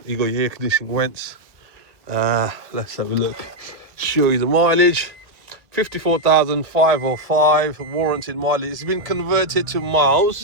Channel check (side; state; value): left; late; 1.6 ms